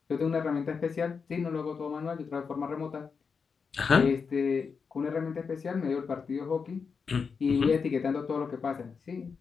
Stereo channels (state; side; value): quieter; right; 5.6 dB